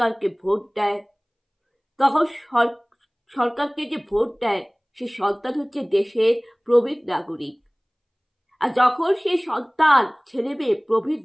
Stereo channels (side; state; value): both; identical; correlation 1.00